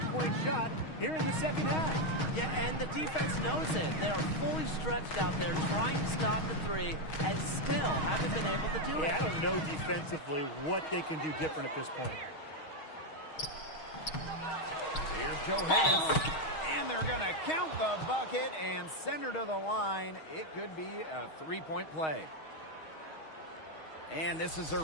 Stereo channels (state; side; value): late; right; 6.3 ms